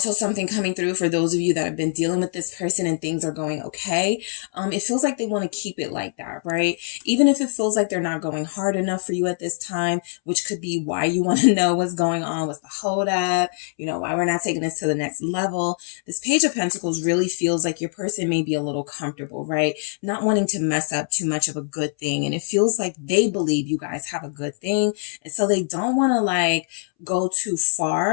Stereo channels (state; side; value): silent; right; 63 dB below the other